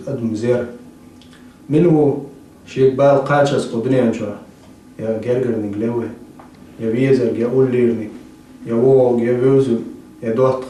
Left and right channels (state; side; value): identical; both; correlation 1.00